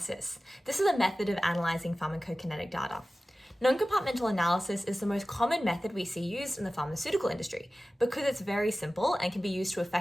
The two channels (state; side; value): normal; both; correlation 0.96